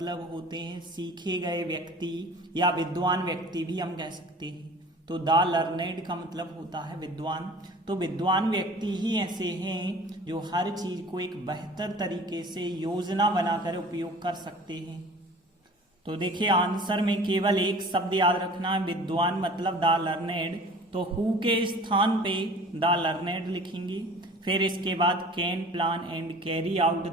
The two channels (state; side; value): normal; both; correlation 0.45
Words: होते हैं सीखे गए व्यक्ति या विद्वान व्यक्ति भी हम कह सकते हैं। तो द लर्नेड का मतलब होता है विद्वान। तो विद्वान व्यक्ति ही ऐसे हैं जो हर चीज को एक बेहतर तरीके से योजना बनाकर उपयोग कर सकते हैं। तो देखिए, आंसर में केवल एक शब्द याद रखना है, विद्वान मतलब द लर्नेड। तो हु के स्थान पे द लर्नेड लिखेंगे, फिर इसके बाद can plan and carry out